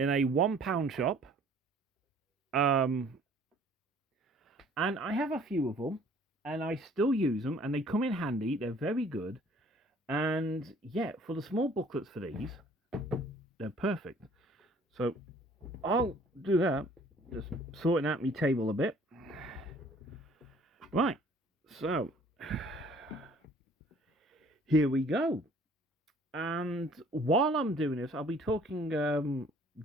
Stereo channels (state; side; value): normal; both; correlation 0.55